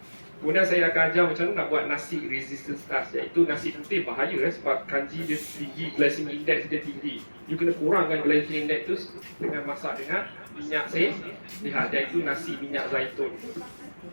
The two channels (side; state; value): both; inverted; correlation -1.00